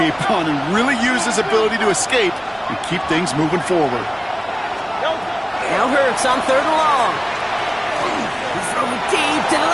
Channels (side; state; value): both; identical; correlation 1.00